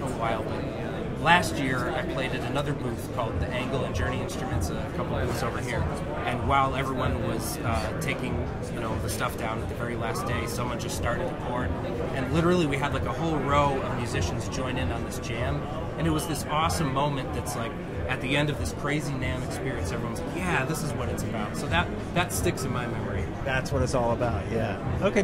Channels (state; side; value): identical; both; correlation 1.00